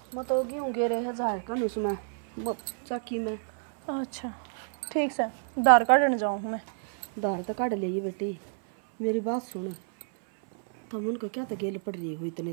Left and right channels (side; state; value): left; silent; 58 dB below the other